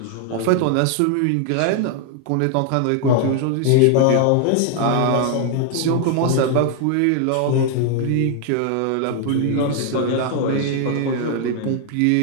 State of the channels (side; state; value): both; different; correlation 0.00